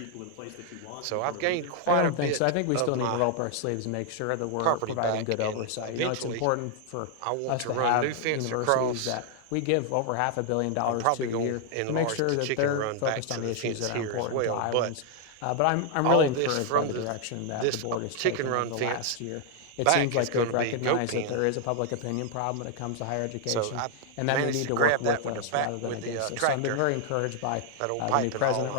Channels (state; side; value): different; both; correlation 0.00